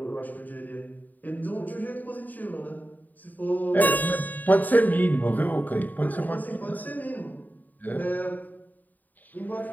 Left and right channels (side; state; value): right; late; 0.084 ms